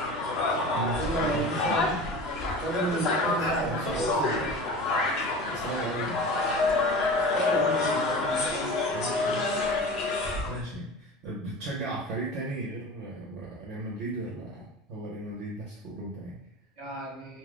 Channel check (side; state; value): both; normal; correlation 0.34